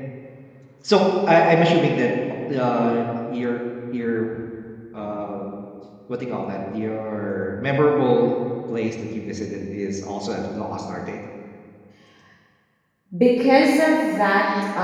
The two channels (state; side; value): identical; both; correlation 1.00